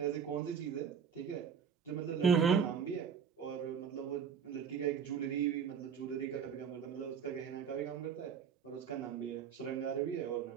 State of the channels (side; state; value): left; quieter; 7.1 dB